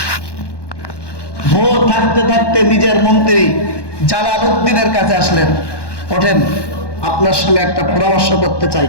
ভোর থাকতে থাকতে নিজের মন্ত্রী জালালউদ্দিনের কাছে আসলেন, ওঠেন, আপনার সঙ্গে একটা পরামর্শ করতে চাই,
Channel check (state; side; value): late; right; 1.1 ms